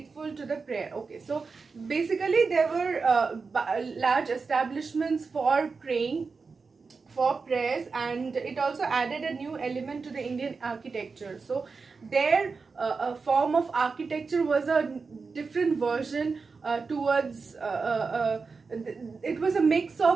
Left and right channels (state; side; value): quieter; left; 4.7 dB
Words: to the prayer. Okay, so basically there were large establishments for praying, for prayers, and it also added a new element to the Indian architecture. So their form of architecture was a different version towards it was a mix